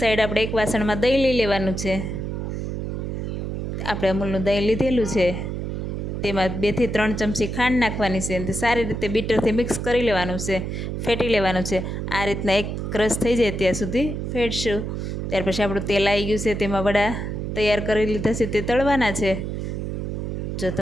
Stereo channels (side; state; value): right; noise; hum, 4 dB below the sound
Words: સાઈડ આપણે એક વાસણમાં દહીં લઈ લેવાનું છે. આપણે અમૂલનું દહીં લીધેલું છે, તેમાં 2 થી 3 ચમચી ખાંડ નાખવાની છે. અને સારી રીતે બીટરથી મિક્સ કરી લેવાનું છે, ફેટી લેવાનું છે. આ રીતના એક ક્રશ થઈ જાય ત્યાં સુધી ફેટશું. ત્યાર પછી આપણું તેલ આવી ગયું છે, તેમાં વડા તૈયાર કરી લીધા છે તે તળવાના છે. જો